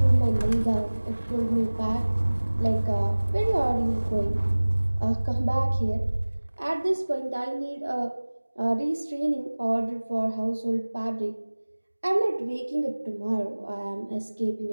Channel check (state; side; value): inverted; both; correlation -1.00